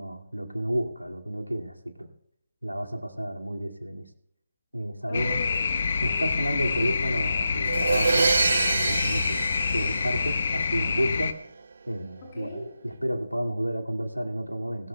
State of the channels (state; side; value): inverted; both; correlation -0.88